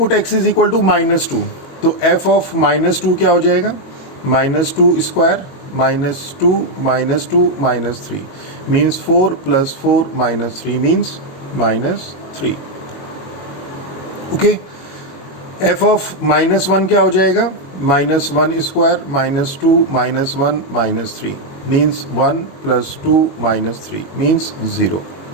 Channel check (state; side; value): late; right; 22 ms